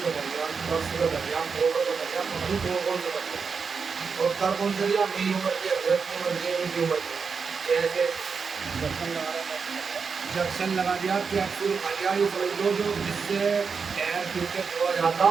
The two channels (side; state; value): left; quieter; 5.5 dB